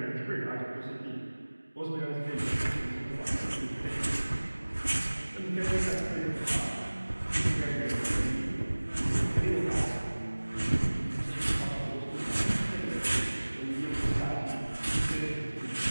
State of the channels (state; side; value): inverted; both; correlation -1.00